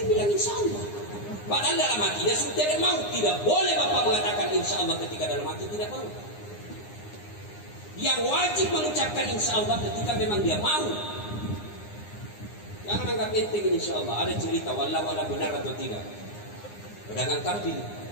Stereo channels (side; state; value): right; late; 9.8 ms